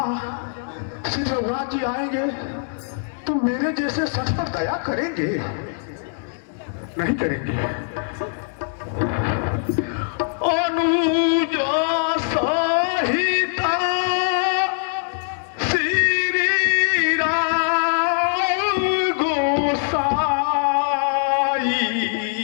श्री रघुनाथ जी आएंगे तो मेरे जैसे सच पर दया करेंगे? नहीं करेंगे। अनुजा सहिता श्री राम गोसाई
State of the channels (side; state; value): right; silent; digital silence